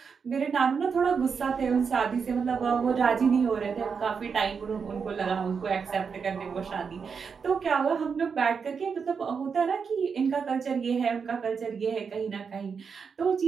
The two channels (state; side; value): quieter; left; 5.9 dB